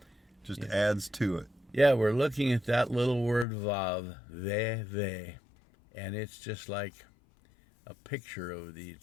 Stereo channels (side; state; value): right; drops out; at 3.5 s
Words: just adds to it. Yeah, we're looking at that little word Vav, they, and it's just like a picture of the